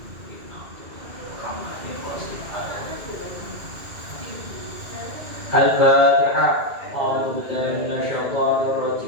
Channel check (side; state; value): left; late; 2.4 ms